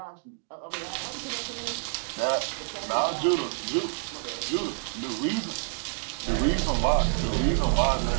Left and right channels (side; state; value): left; silent; 59 dB below the other